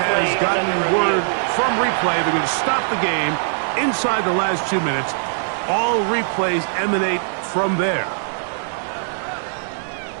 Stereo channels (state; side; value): silent; left; digital silence